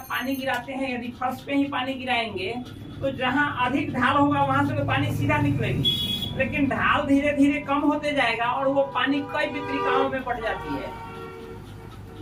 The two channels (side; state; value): both; identical; correlation 1.00